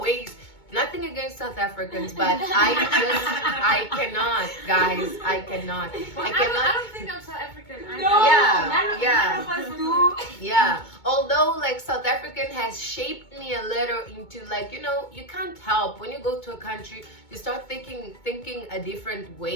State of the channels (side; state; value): right; late; 2.2 ms